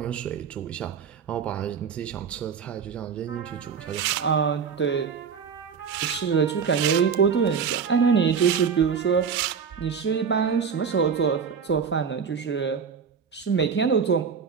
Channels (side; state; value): left; quieter; 6.5 dB